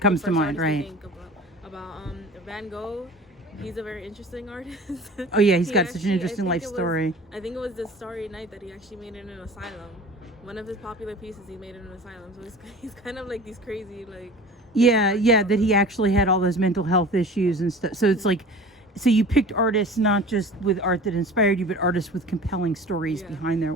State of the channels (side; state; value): both; normal; correlation 0.40